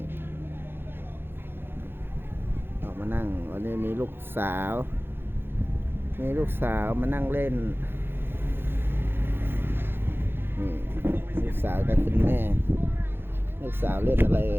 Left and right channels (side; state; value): left; late; 0.10 ms